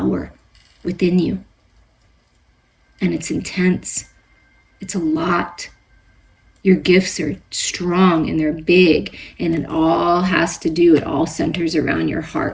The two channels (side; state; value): both; identical; correlation 1.00